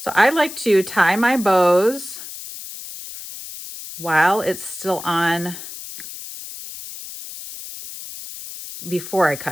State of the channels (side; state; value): left; noise; hiss, 12 dB below the sound